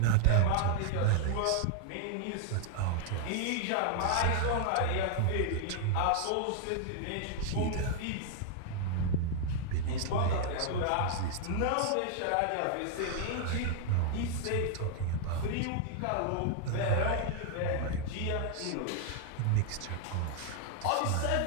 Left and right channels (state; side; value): different; both; correlation 0.00